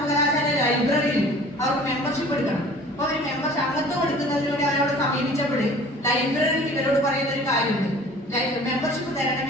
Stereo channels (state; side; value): normal; both; correlation 0.47